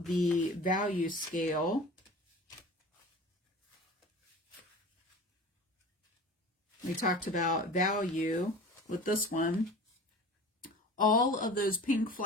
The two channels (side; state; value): both; normal; correlation 0.39